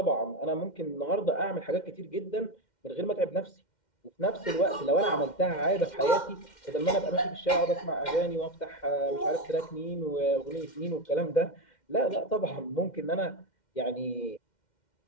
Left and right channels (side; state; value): right; late; 2.1 ms